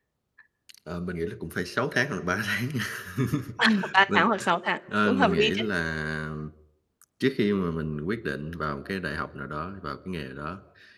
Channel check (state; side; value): identical; both; correlation 1.00